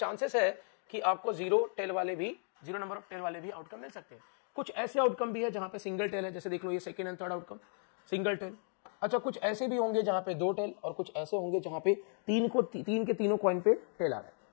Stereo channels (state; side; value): silent; right; 54 dB below the other